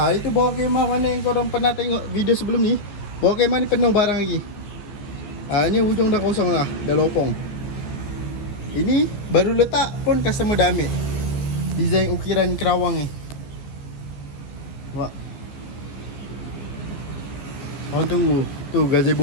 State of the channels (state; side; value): late; right; 15 ms